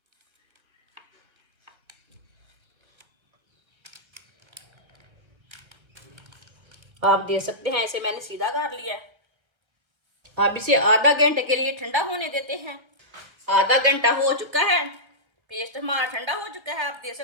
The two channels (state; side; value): late; left; 1.6 ms